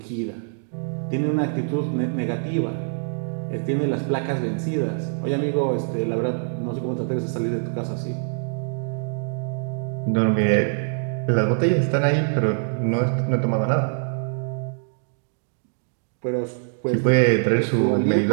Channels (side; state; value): left; silent; digital silence